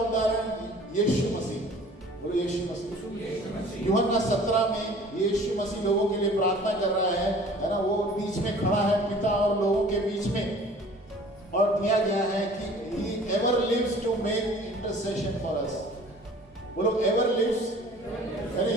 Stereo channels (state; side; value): normal; both; correlation 0.48